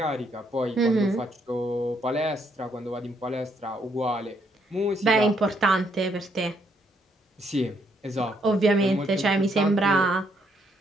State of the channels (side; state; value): both; normal; correlation 0.72